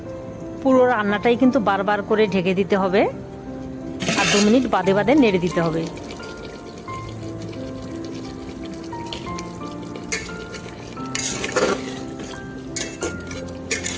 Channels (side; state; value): both; identical; correlation 1.00